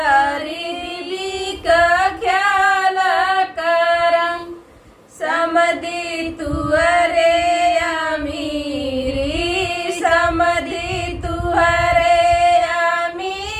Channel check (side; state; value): both; identical; correlation 1.00